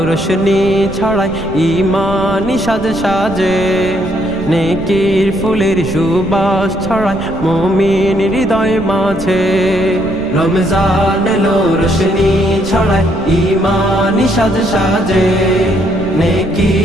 রোশনি ছড়ায় ঈমানি সাজে সাজে, নেকির ফুলের সুবাস ছড়ায় মুমিন হৃদয় মাঝে। রমজান এলো রোশনি ছড়ায় ঈমানি সাজে সাজে,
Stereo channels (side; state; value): right; noise; rumble, 12 dB below the sound